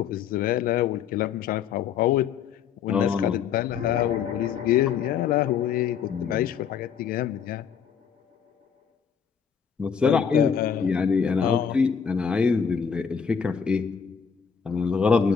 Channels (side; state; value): right; quieter; 7.1 dB